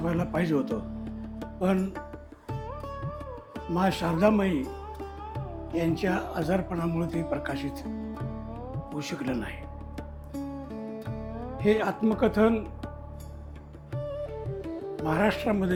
व्हायला पाहिजे होतं, पण मा शारदामयी यांच्या आजारपणामुळे ते प्रकाशित होऊ शकलं नाही. हे आत्मकथन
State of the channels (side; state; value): both; identical; correlation 1.00